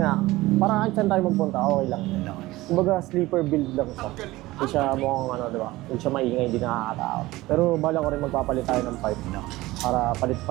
parang kahit saan tayo magpunta, okay lang. Kumbaga sleeper build lang siya. Hindi siya mukhang diba? Hindi siya maingay, hindi nakakatao. Pero bala ko rin magpapalit tayo ng pipe para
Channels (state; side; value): quieter; left; 18.7 dB